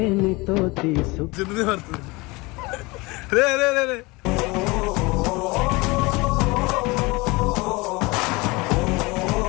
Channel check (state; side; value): quieter; right; 24.2 dB